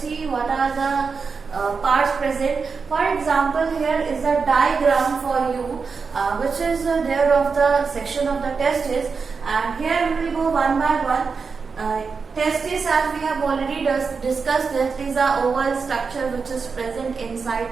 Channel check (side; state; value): left; quieter; 5.1 dB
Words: what are the parts present. For example, here is a diagram for you which is there of the section of the testis, and here we will go one by one. Testis, as we have already discussed, that is a oval structure which is present inside